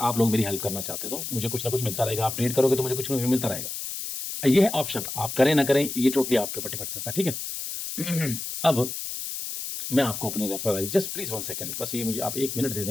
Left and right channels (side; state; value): left; noise; hiss, 6 dB below the sound